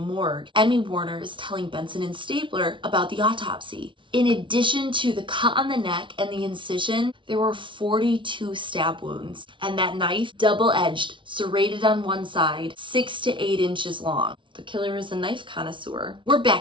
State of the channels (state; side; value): late; left; 0.24 ms